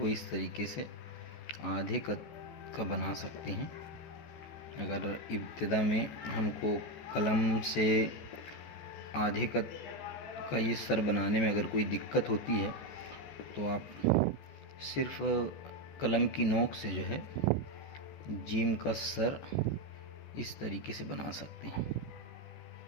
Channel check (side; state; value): right; late; 14 ms